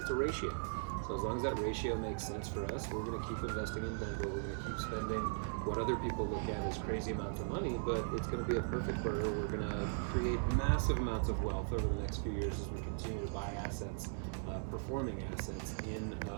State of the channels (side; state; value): left; silent; digital silence